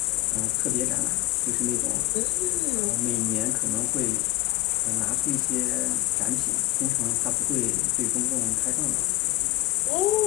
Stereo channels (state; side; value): quieter; right; 17.7 dB